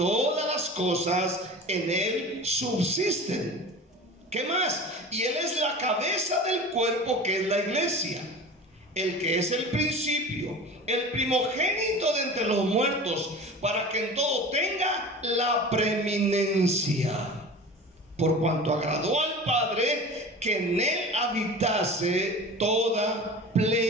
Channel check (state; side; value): normal; both; correlation 0.36